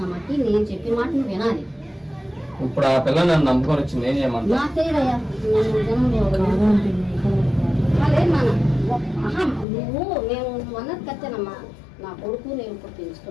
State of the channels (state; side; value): drops out; right; at 9.7 s